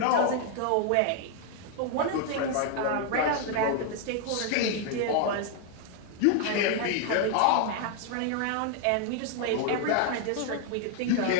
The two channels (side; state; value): both; different; correlation 0.00